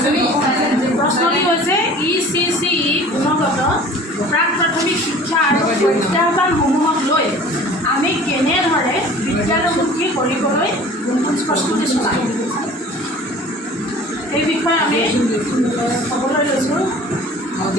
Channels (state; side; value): normal; both; correlation 0.45